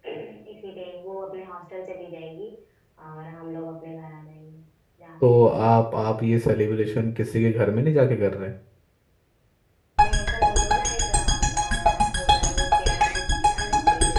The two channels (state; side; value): identical; both; correlation 1.00